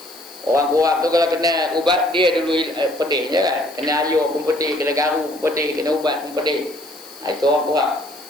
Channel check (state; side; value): noise; left; hiss, 20 dB below the sound